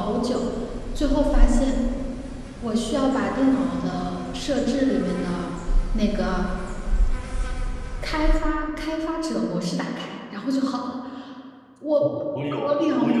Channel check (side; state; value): both; identical; correlation 1.00